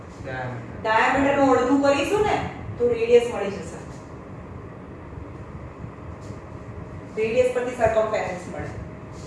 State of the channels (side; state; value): both; identical; correlation 1.00